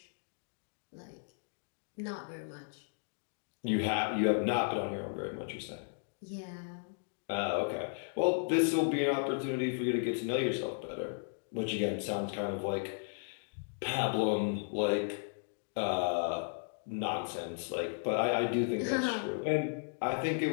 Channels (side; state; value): right; silent; digital silence